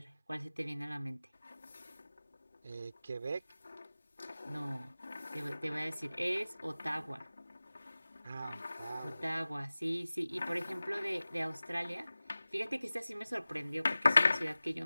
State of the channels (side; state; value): both; inverted; correlation -0.97